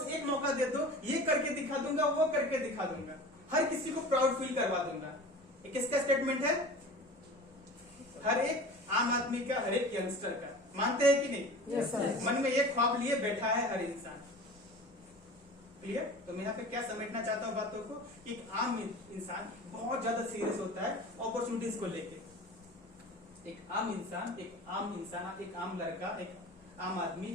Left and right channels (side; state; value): both; normal; correlation 0.37